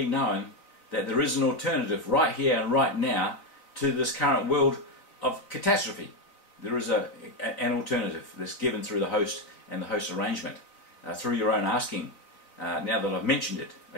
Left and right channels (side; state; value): right; late; 4.0 ms